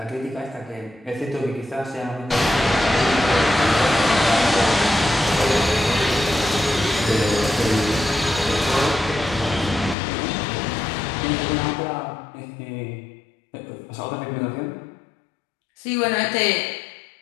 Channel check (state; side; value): drops out; right; at 10.0 s